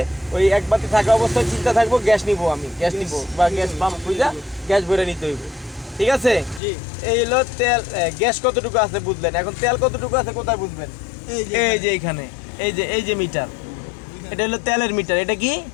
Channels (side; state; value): right; drops out; at 6.6 s